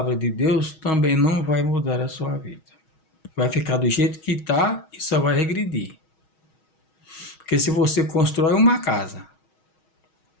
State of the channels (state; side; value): late; right; 6.3 ms